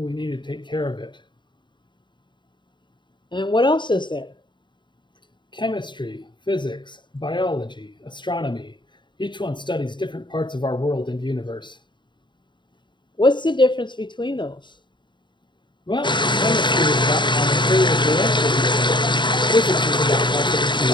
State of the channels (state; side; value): late; right; 0.23 ms